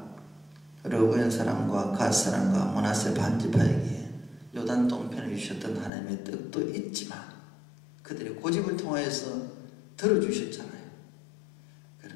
갓 사람과 므낫세 반지파에게 요단 동편을 주셨던 하나님의 뜻도 있지만 그들의 고집을 통하여서 들어주셨잖아요.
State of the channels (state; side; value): drops out; right; at 5.9 s